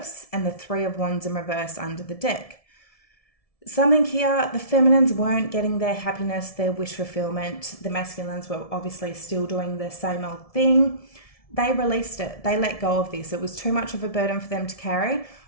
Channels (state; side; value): late; right; 1.7 ms